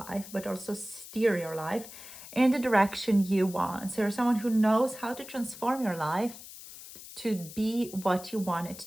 but also steer your life in the direction you want. So you're someone who knows how to transform your life to be what you want it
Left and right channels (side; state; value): left; noise; hiss, 15 dB below the sound